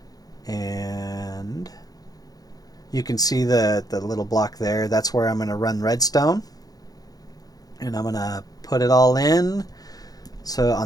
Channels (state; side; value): late; right; 0.18 ms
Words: And you can see the little block there. That's where I'm going to run redstone. And I'm going to put it all in. So